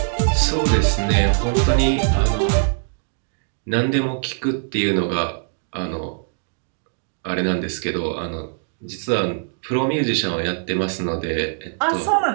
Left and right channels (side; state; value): left; silent; digital silence